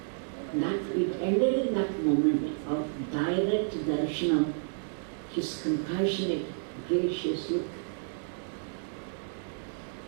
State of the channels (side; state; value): left; silent; digital silence